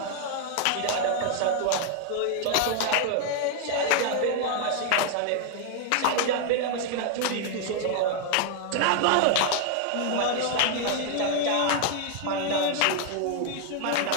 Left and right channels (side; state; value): both; different; correlation 0.00